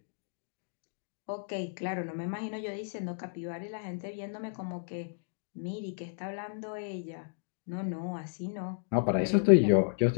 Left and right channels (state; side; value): silent; right; digital silence